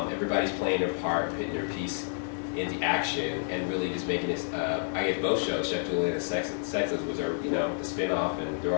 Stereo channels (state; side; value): silent; right; 58 dB below the other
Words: playing their part, putting their piece into action, and really just making this. I guess both shows, Chef Julian and Sexless, was our, the spinoff, and they're